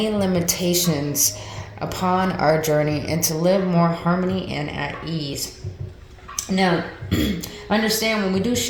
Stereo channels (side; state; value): both; identical; correlation 1.00